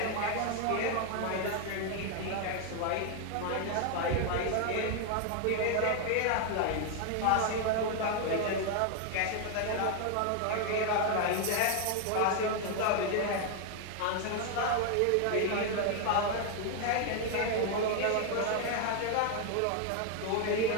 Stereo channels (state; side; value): different; both; correlation 0.01